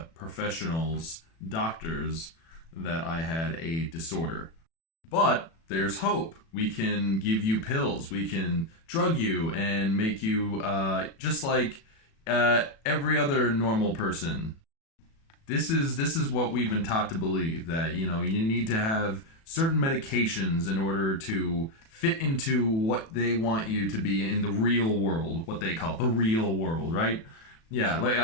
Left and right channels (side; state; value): right; late; 36 ms